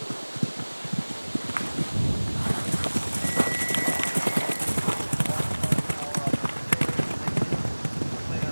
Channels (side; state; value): both; inverted; correlation -1.00